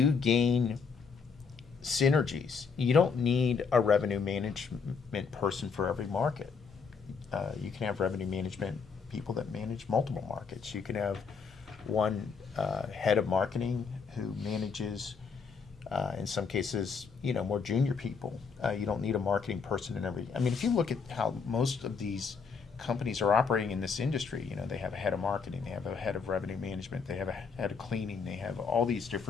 gain synergies. You don't need a revenue management person for every market. You can have revenue management people that manage multiple markets. You can have one head of marketing who manages, in some cases, you know, more junior people. You don't need a marketing person in every. I mean, if you look at how most of these companies are operating in this industry, you know, they have a head of marketing, they have a head of revenue management, they have a head of cleaning, they have all these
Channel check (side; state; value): right; quieter; 5.6 dB